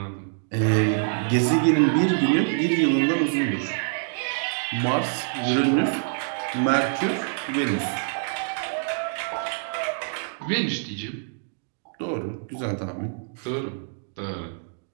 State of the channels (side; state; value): left; silent; digital silence